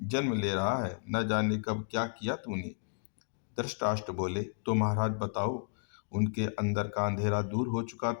जन्म ले रहा है, न जाने कब क्या किया तूने। धृतराष्ट्र बोले, तो महाराज बताओ। उनके अंदर का अंधेरा दूर हो चुका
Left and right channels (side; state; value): right; silent; digital silence